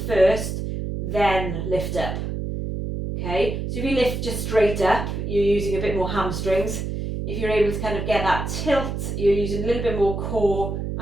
then lift up. Okay, so if you lift just straight up, you're using a bit more hamstrings. If you're able to kind of get that tilt, you're using a little bit more core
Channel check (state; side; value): noise; right; hum, 4 dB below the sound